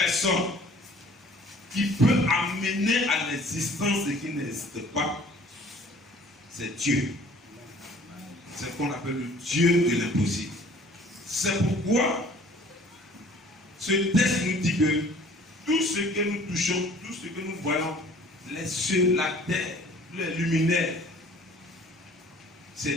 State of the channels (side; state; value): both; normal; correlation 0.52